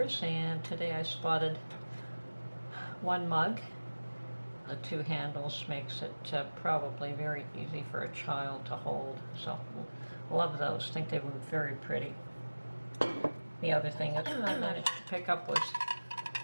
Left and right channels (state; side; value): inverted; both; correlation -1.00